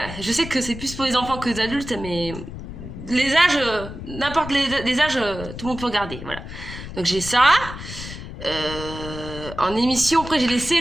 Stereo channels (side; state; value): left; noise; rumble, 11 dB below the sound